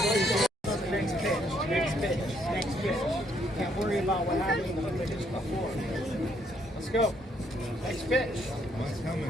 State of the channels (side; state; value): both; normal; correlation 0.70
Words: Can't worry about what happens when they hit you before. Let's go. Next pitch. One's